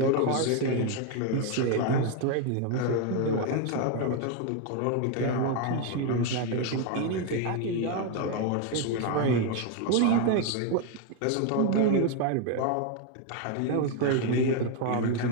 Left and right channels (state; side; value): different; both; correlation 0.01